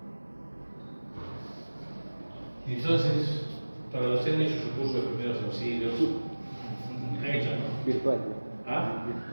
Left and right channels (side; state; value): both; inverted; correlation -1.00